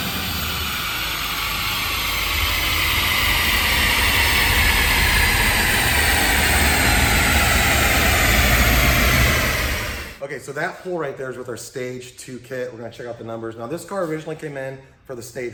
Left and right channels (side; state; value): both; identical; correlation 1.00